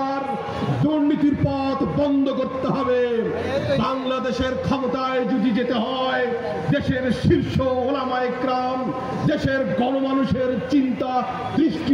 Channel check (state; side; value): identical; both; correlation 1.00